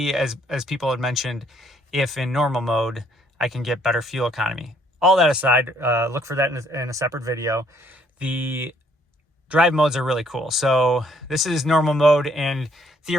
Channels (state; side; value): normal; both; correlation 0.65